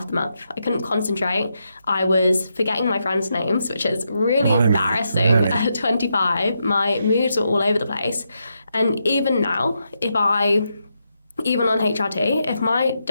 the month. I couldn't concentrate. I was forgetting my friends' names, which is really embarrassing at 25. My moods were all over the place. And even now, even on HRT, if my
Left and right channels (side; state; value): both; inverted; correlation -0.83